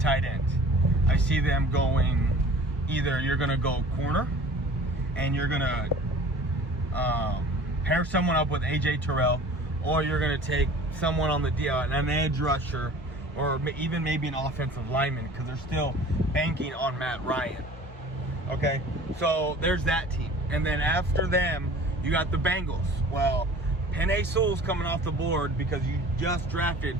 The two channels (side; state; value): both; normal; correlation 0.44